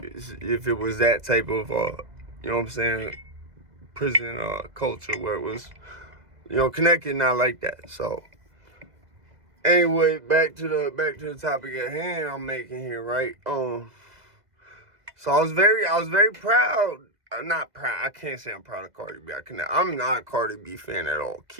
If it was that type of, you know what I'm saying, prison culture where it was, connected, not like that. So, anyway, back to the topic at hand I'm making here, right? So I was very proud. Not proud. I can't say I'm proud of Cardi B. I'm not a Cardi B fan at all.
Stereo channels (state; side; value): late; left; 2.0 ms